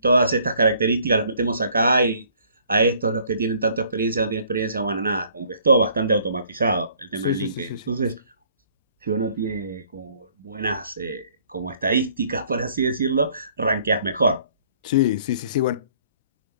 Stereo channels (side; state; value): both; inverted; correlation -0.59